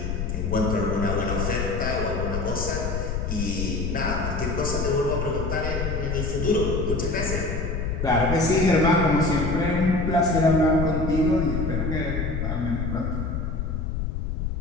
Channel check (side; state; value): left; noise; rumble, 2 dB below the sound